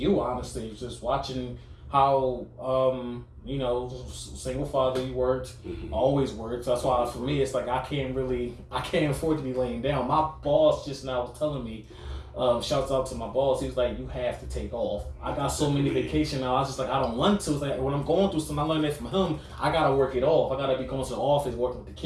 honestly. Just watching how, you know, single father you worked, always worked. That's why for me, it's like I can't afford to be laying down. My boss just now was telling me, shouts out to my boss, he was like, you have to take off. I got so many vacation now, I was just like, I don't want to. It's like, when I'm going through something, I learned that from him, I gotta work it off. I gotta be going to the office, working with the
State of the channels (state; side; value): identical; both; correlation 1.00